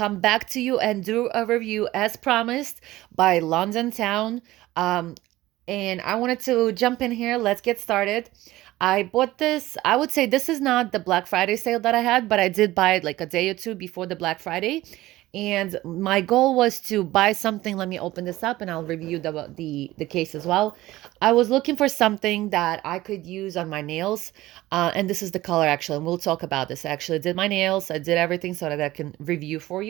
back to you and do a review as promised by Londontown. Um, and I wanted to jump in here. Let's get started. I bought this. I would say this is not the Black Friday sale that I had, but I did buy it like a day or two before the Black Friday. And my goal was to buy something. Let me open this up and I'll review the case as well. I was looking for something that I could use on my nails. And this is the color actually, and we'll talk about this. I actually did my nails, I did everything so that I can review for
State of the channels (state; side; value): quieter; left; 16.9 dB